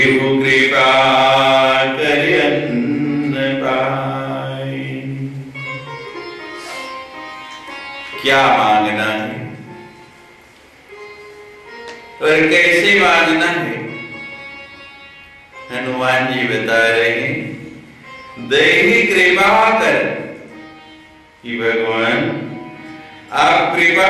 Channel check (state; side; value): identical; both; correlation 1.00